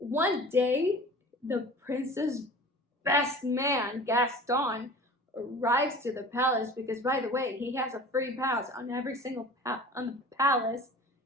day, the prince's best man, Gaston, arrives to the palace because, by the way, he has a free pass on every single on the palace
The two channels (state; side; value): normal; both; correlation 0.41